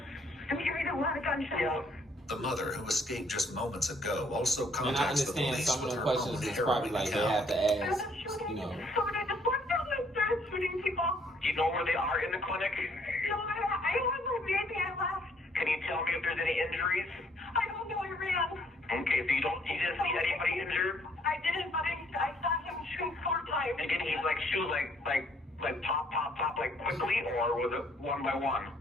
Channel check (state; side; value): normal; both; correlation 0.65